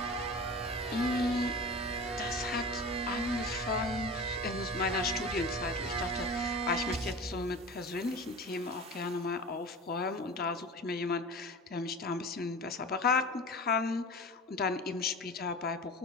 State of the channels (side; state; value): both; normal; correlation 0.34